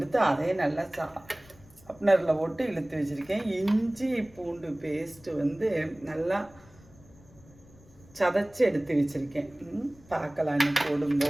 அதே நல்லா ஷார்ப்னரில் போட்டு இழுத்து வச்சுருக்கேன். இஞ்சி பூண்டு பேஸ்ட்டு நல்லா சதைச்சி எடுத்து வச்சுருக்கேன். பார்க்கலாம் இன்னும்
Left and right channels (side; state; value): left; noise; rumble, 25 dB below the sound